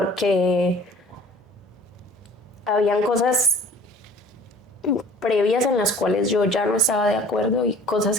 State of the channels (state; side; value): normal; both; correlation 0.49